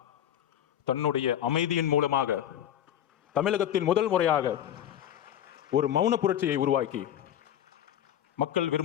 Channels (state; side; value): quieter; right; 10.6 dB